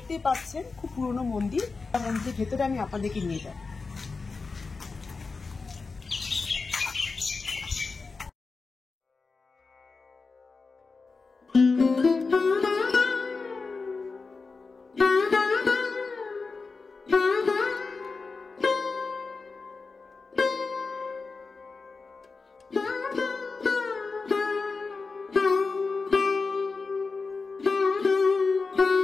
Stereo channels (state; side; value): quieter; right; 4.3 dB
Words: পাচ্ছেন খুব পুরনো মন্দির। মন্দিরের ভেতরে আমি আপনাদেরকে নিয়ে যাব।